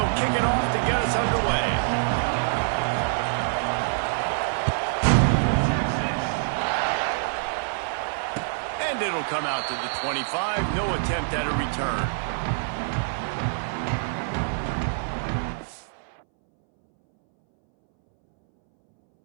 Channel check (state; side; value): silent; left; 61 dB below the other